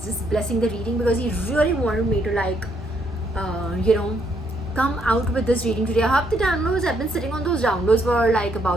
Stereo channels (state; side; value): normal; both; correlation 0.73